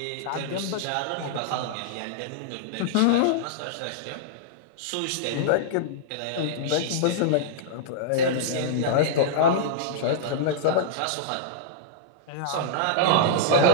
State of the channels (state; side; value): different; both; correlation -0.02